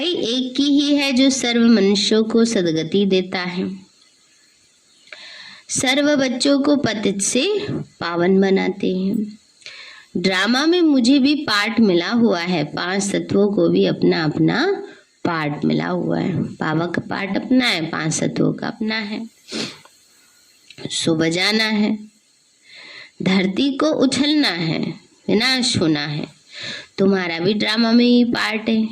एक की ही है जो सर्व मनुष्यों को सदगति देता है, सर्व बच्चों को पतित से पावन बनाते हैं। ड्रामा में मुझे भी पार्ट मिला हुआ है, 5 तत्वों को भी अपना अपना पार्ट मिला हुआ है। बाबा का पार्ट अपना है, 5 तत्वों का अपना है। सो बजाना है, धरती को उछलना है, विनाश होना है। तुम्हारा भी ड्रामा में ही पार्ट है,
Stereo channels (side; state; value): both; identical; correlation 1.00